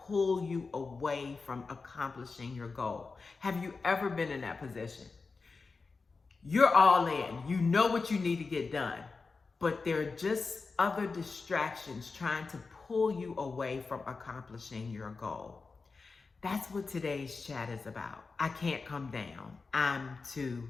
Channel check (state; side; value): quieter; right; 4.3 dB